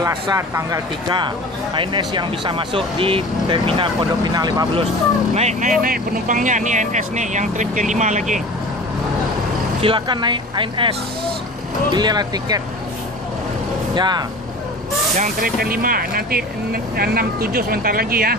tanggal 3 ANS yang bisa masuk di terminal Pondok Pinang Lebak Bulus. Naik penumpangnya nih ANS nih yang trip ke-5 lagi. Silakan naik ANS. Belilah tiket. Ya. Yang trip ke-5 nanti 6-7 sebentar lagi ya.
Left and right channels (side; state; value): both; normal; correlation 0.38